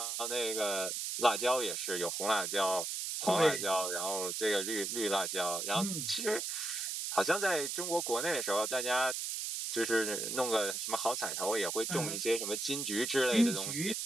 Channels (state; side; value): noise; right; hiss, 3 dB below the sound